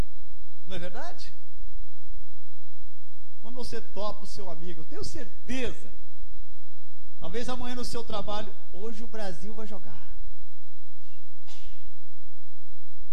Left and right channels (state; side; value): identical; both; correlation 1.00